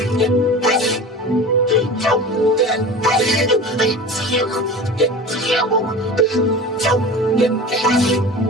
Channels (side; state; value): both; normal; correlation 0.35